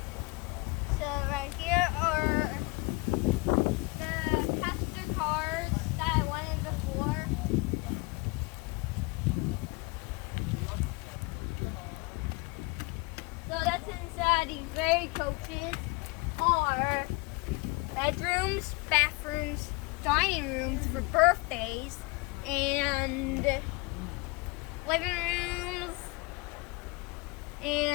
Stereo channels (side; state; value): right; quieter; 26.1 dB